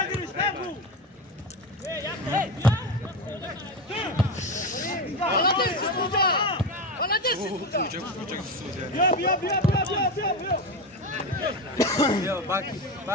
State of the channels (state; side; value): normal; both; correlation 0.18